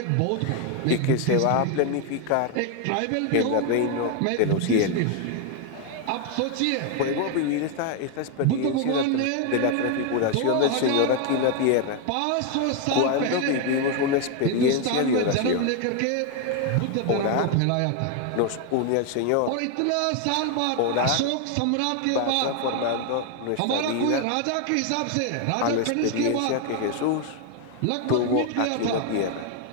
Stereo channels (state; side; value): different; both; correlation 0.01